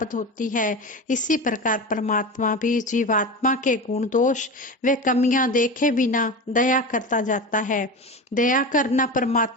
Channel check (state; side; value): normal; both; correlation 0.26